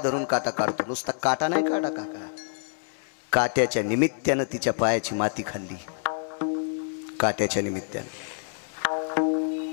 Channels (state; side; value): silent; right; 60 dB below the other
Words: धरून काटा काढतो नुसता काटा नाही काढा काका काट्याच्या निमित्तानं तिच्या पायाची माती खाल्ली काट्याच्या निमित्तानं